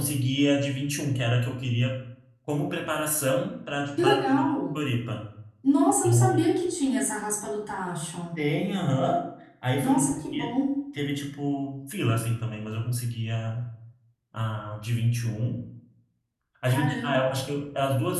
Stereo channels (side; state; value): both; identical; correlation 1.00